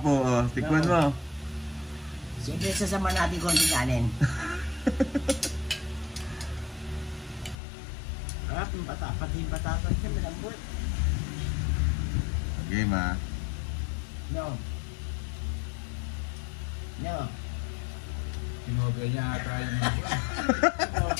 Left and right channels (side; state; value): right; drops out; at 7.6 s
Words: tikman mo. Siyempre, sasama natin konti kanin. Harap yung pati yung patatas siya, malambot. Game ha. No. No. Sinobra niya ata yung